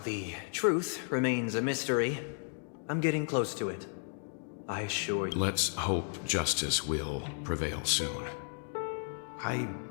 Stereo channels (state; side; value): silent; right; 55 dB below the other